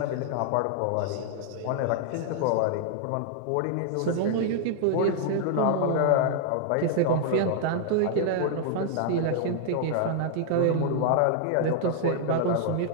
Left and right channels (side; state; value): both; different; correlation 0.00